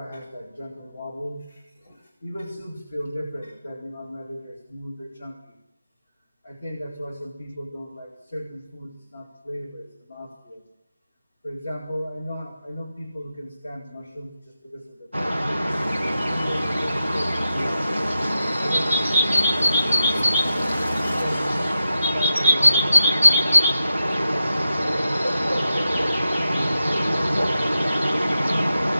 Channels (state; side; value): inverted; both; correlation -0.90